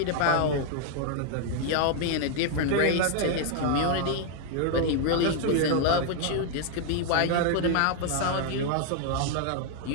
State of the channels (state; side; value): different; both; correlation 0.00